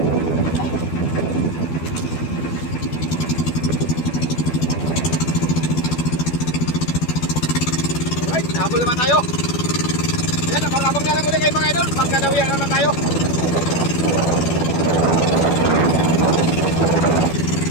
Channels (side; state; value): right; late; 12 ms